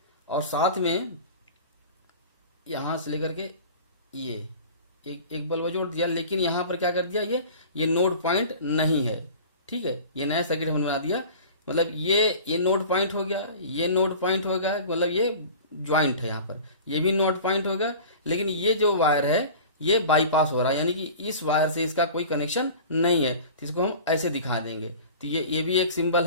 और साथ में यहाँ से लेकर के ये एक बल्ब जोड़ दिया, लेकिन यहाँ पर क्या कर दिया, ये नोड पॉइंट नहीं है। ठीक है, ये नया सर्किट हमने बना दिया, मतलब ये नोड पॉइंट हो गया, ये नोड पॉइंट हो गया, मतलब ये ज्वाइंट है, यहाँ पर ये भी नोड पॉइंट हो गया। लेकिन ये जो वायर है ये बाईपास हो रहा है, यानी कि इस वायर से इसका कोई कनेक्शन नहीं है, तो इसको हम ऐसे दिखा देंगे। तो ये भी एक सिंबल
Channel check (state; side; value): inverted; both; correlation -0.40